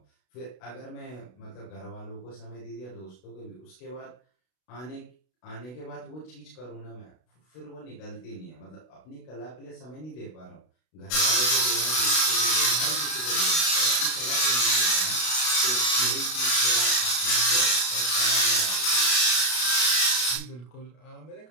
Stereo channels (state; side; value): late; right; 32 ms